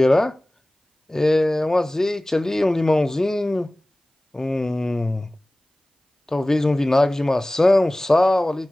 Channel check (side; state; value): both; normal; correlation 0.98